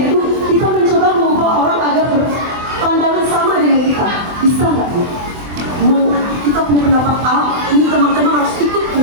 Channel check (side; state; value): left; late; 24 ms